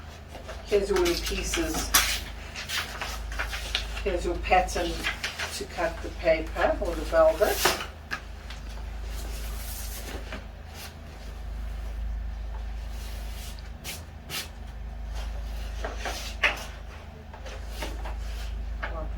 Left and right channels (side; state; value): both; identical; correlation 1.00